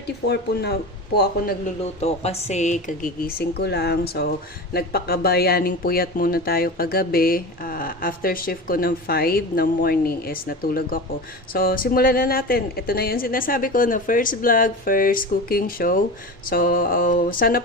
po ako nagluluto kasi kagigising ko lang. So nagpakabayaning puyat muna tayo kagabi. After shift ko ng 5 ng morning is natulog ako. So simulan na natin. Ito na yung sinasabi ko na first vlog, first cooking show. So sana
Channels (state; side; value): normal; both; correlation 0.28